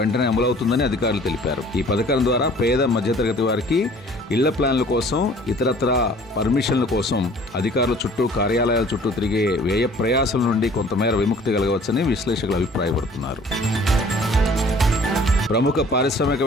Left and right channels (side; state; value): both; normal; correlation 0.52